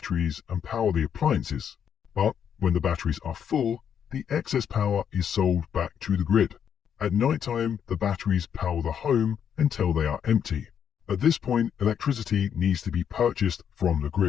and power the appliances, but when the batteries are full, the excess power is sold back to the grid. At nighttime, the batteries power the home until they are empty. At this point, electricity needs to be purchased from the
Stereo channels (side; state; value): right; quieter; 8.3 dB